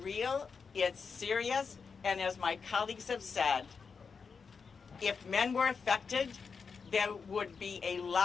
real, it's serious, and as my colleagues have said, if men were affected, there would be a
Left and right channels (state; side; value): quieter; right; 5.5 dB